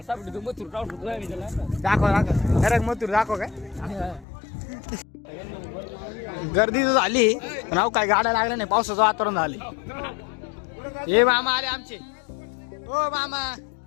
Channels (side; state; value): right; drops out; at 4.2 s